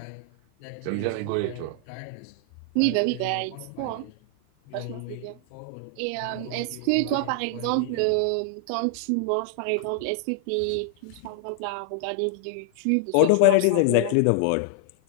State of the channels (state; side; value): different; both; correlation 0.00